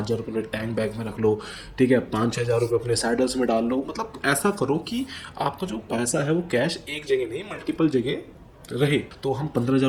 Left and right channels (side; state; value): both; identical; correlation 1.00